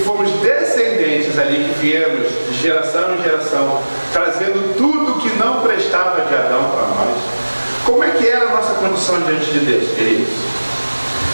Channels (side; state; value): both; inverted; correlation -1.00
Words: descendentes ali, que viemos de geração em geração, trazendo tudo que não prestava de Adão para nós. Como é que era a nossa condição diante de Deus, queridos?